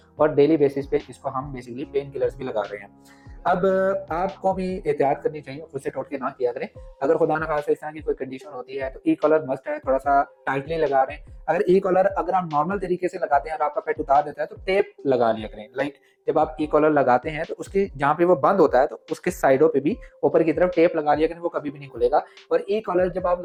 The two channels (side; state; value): both; identical; correlation 1.00